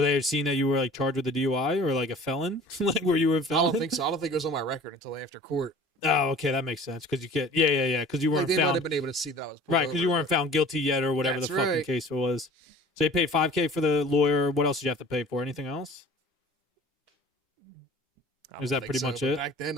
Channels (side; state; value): both; normal; correlation 0.46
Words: they have seen that you were like charged with a DUI or like a felon? Like were you a I felon? don't think so. I don't think it was on my record until after court. Oh, okay, that makes sense because you can't. Yeah. Because you Like, weren't they might found have been able to see that I was pulled right because you over, weren't found guilty yet or whatever That's the fucking right. case was. So you paid $5K for the lawyer. What else did you have to pay for? Anything else? but I Is don't that think pretty so, much but it? Back then,